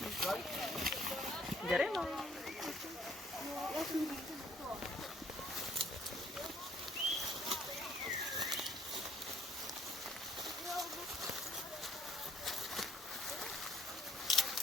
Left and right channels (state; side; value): normal; both; correlation 0.59